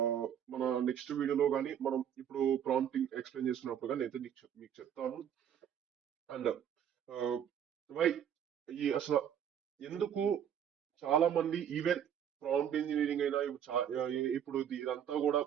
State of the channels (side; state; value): left; quieter; 9.1 dB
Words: మన నెక్స్ట్ వీడియోలో కానీ మనం ఇప్పుడు ప్రాంప్టింగ్ ఎక్స్ప్లెయిన్ చేస్తున్నప్పుడు కానీ అయితే మీకు చెప్తాను. అండ్ వై ఈ అసలు ఎందుకు చాలా మంది ఈవెన్ ప్రాంప్ట్ ఇంజనీరింగ్ అయినా ఇప్పుడు ఇదంతా కూడా